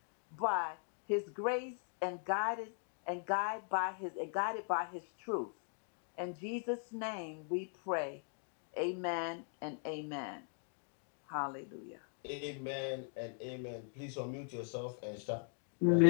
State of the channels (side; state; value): right; silent; 51 dB below the other